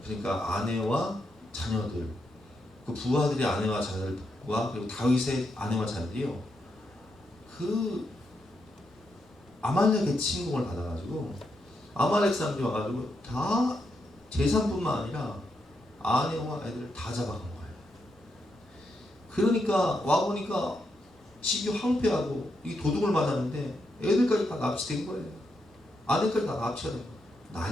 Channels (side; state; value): both; normal; correlation 0.82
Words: 그러니까 아내와 자녀들, 그 부하들의 아내와 자녀들과 그리고 다윗의 아내와 자녀들이요, 그 아말렉의 침공을 받아가지고 아말렉 사람들이 와가지고 다 재산뿐만 아니라 아내와 애들을 다 잡아간 거예요. 그러니까 와보니까 집이 황폐하고 이 도둑을 맞았는데 애들까지 다 납치된 거예요. 아내까지 다 납치가 된 거예요.